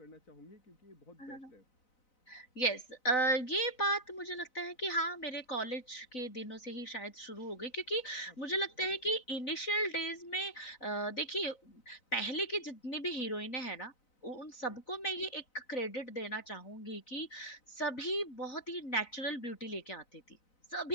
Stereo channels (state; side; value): late; right; 4.0 ms